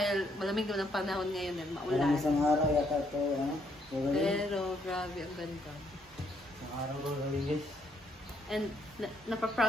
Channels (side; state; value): both; normal; correlation 0.72